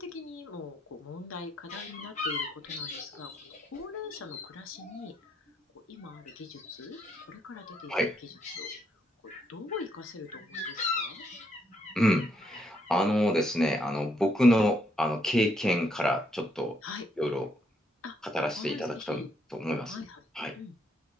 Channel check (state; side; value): normal; both; correlation 0.74